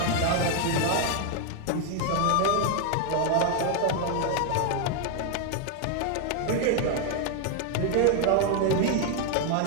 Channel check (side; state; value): both; different; correlation 0.01